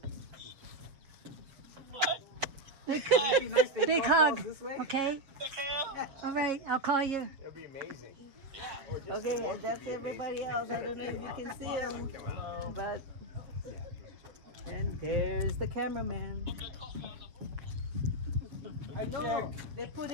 Big hug. Okay? All right, I'll call you. It'll be amazing. Okay, and that's everybody else. I don't know if you can see them. Hello. But, and there's the cameraman. Hi, No, Chick. they put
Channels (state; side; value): late; left; 7.3 ms